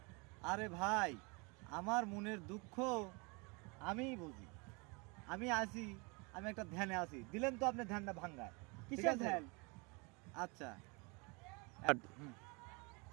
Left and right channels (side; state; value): left; quieter; 29.7 dB